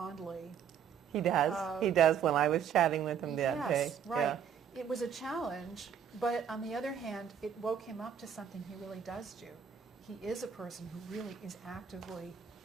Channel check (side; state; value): left; quieter; 8.0 dB